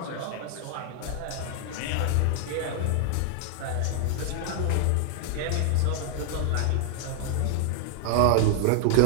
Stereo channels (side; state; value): both; different; correlation 0.00